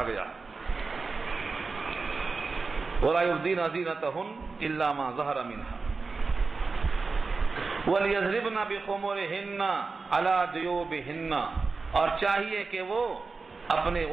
گیا وَلَا يُبْدِينَ زِينَتَهُنَّ إِلَّا مَا ظَهَرَ مِنْهَا وَلْيَضْرِبْنَ بِخُمُرِهِنَّ عَلَى جُيُوبِهِنَّ. اور چاہیے کہ وہ اپنے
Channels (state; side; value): quieter; left; 4.2 dB